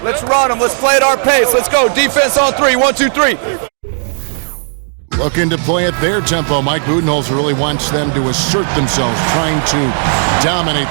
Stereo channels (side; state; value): left; silent; digital silence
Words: Let's run them. Let's play at our pace. Let's go. Defense on 3. 1, 2, 3. Looking to play at their tempo. Mike Budenholzer really wants them to assert themselves, trying to dominate